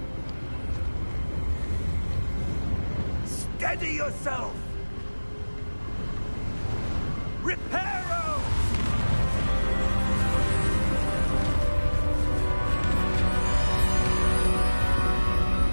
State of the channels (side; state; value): both; inverted; correlation -1.00